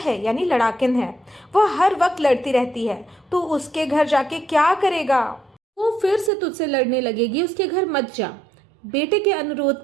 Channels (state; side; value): drops out; left; at 6.3 s